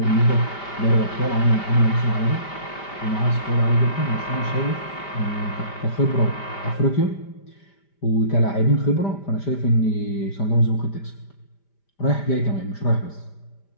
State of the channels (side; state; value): right; late; 5.1 ms